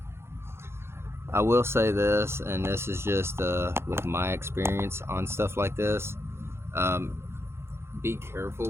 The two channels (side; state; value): left; late; 0.12 ms